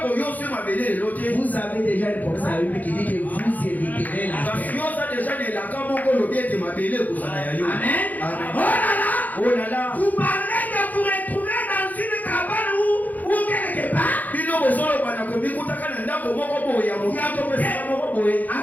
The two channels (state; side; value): late; right; 0.081 ms